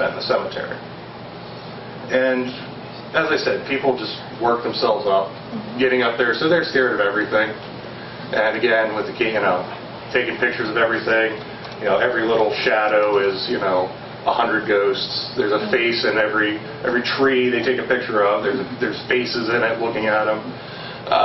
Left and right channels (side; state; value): both; identical; correlation 1.00